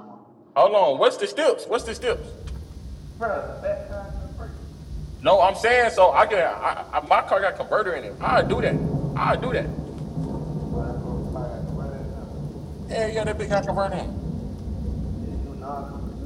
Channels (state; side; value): identical; both; correlation 1.00